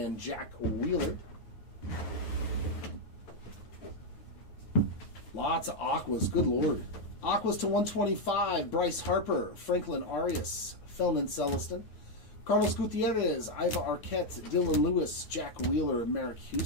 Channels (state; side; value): late; right; 9.4 ms